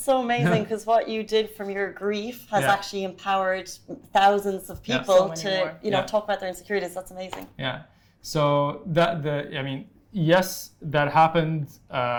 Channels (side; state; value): both; identical; correlation 1.00